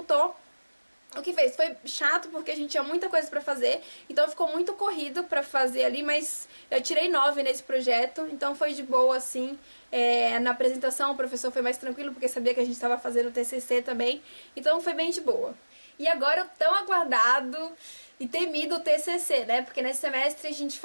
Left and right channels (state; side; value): inverted; both; correlation -1.00